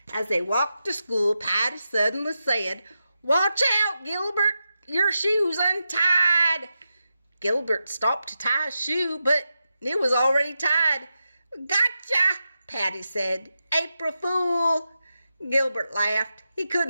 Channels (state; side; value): inverted; both; correlation -0.89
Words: As they walked to school, Patty suddenly said, "Watch out, Gilbert, your shoe's untied." Gilbert stopped to tie his shoe, but it was already tied. "Gotcha," Patty said. "April Fool." Gilbert laughed. He